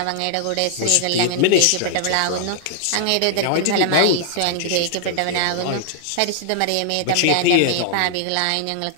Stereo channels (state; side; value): different; both; correlation 0.00